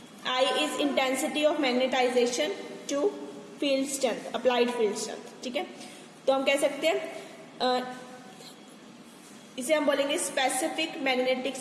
I is intensity of magnetization to field strength, applied field strength, ठीक है। तो हम कह सकते हैं इसे हम बोलेंगे स्पेसिफिक मैग्नेटिक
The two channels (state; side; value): identical; both; correlation 1.00